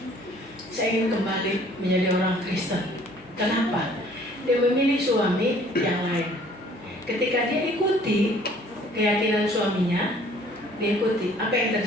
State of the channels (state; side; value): normal; both; correlation 0.56